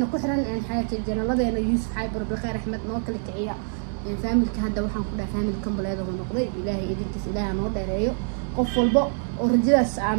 كحرن إن حياة الجنة الله إنه يوسف حيبر بخير أحمد نوكل كعيا فامل كهذا وحن كنا فامل كم بلاد ونقضي إلهي إذا إلهي نور دايريو قفل بق ورجلس عن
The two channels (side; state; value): left; silent; 61 dB below the other